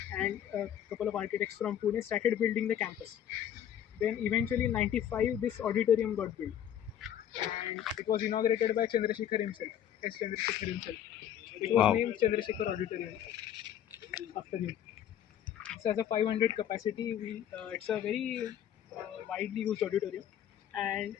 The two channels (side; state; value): right; quieter; 10.2 dB